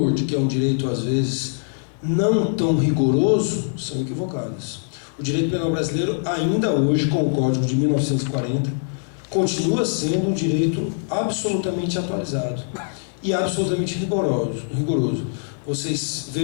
de que é um direito às vezes não tão rigoroso, são equivocadas. O direito penal brasileiro, ainda hoje, com o Código de 1940, continua sendo um direito absolutamente atualizado e absolutamente rigoroso. Vocês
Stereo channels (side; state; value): right; silent; digital silence